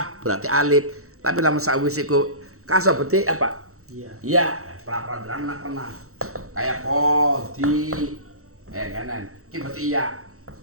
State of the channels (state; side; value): late; left; 0.64 ms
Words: berarti alif. Tapi lamun sawise iku kaso berarti apa? Iya. Iya, pra-pra pernah. Kayak kodi kanan. Iki berarti iya.